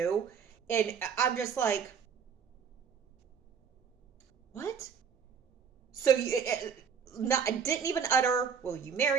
And I'm just like, what? So I didn't even utter, will you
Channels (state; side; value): quieter; left; 6.8 dB